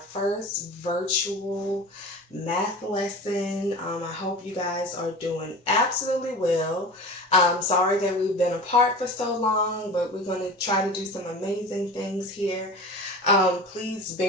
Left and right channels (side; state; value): both; normal; correlation 0.35